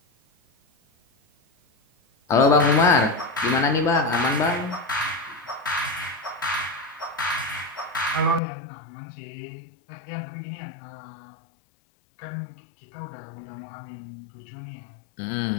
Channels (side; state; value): right; drops out; at 8.4 s